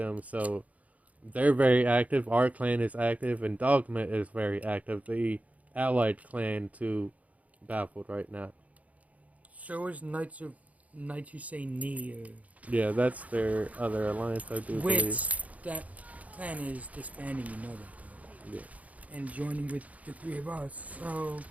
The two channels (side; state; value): left; late; 0.070 ms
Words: so they're very active. Our clan is active, and Dogma is very active. The allied clan to Baffled right now. So is Knights Who Say Knee, Yeah, that's their other alliance, I do believe. which that clan is disbanding. You know that, Yeah. though, and joining with the three of us. So